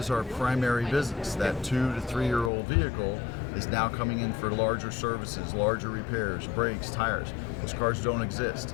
our primary business. That 2 to 3 year old vehicle is now coming in for larger services, larger repairs, brakes, tires. Those cars don't exist.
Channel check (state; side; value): drops out; right; at 2.5 s